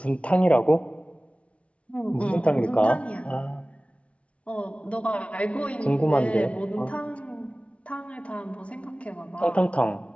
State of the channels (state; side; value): late; right; 0.062 ms